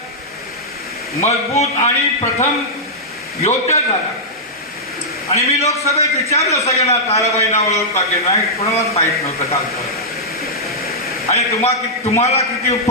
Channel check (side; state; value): both; normal; correlation -0.10